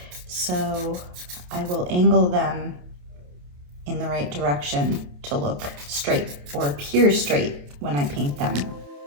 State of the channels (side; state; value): left; late; 28 ms